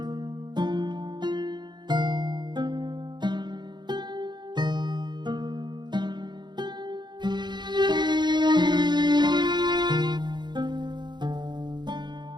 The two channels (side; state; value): left; late; 0.21 ms